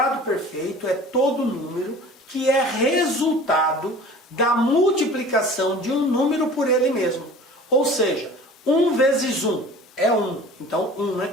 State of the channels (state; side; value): normal; both; correlation 0.43